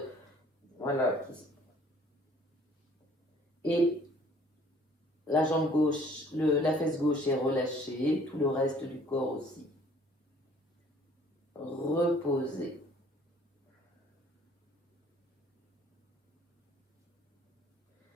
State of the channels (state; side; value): normal; both; correlation 0.56